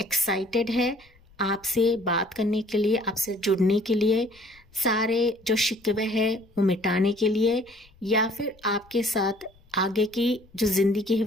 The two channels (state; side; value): noise; left; rumble, 29 dB below the sound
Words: एक्साइटेड है आपसे बात करने के लिए, आपसे जुड़ने के लिए, सारे जो शिकवे हैं वो मिटाने के लिए, या फिर आपके साथ आगे की जो ज़िंदगी है